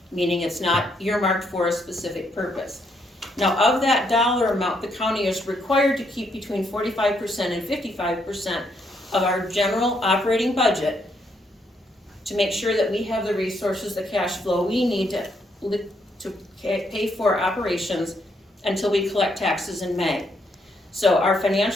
meaning it's not earmarked for a specific purpose. Now, of that dollar amount, the county is required to keep between 45% and 55% of our general operating budget to make sure that we have the resources, the cash flow we need to pay for operations until we collect taxes in May. So our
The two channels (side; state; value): both; normal; correlation 0.74